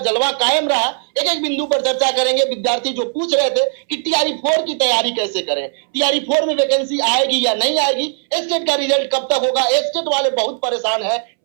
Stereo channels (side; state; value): left; silent; 66 dB below the other